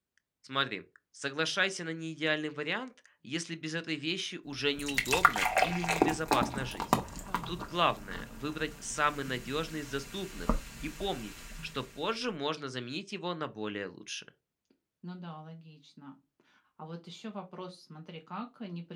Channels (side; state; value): both; identical; correlation 1.00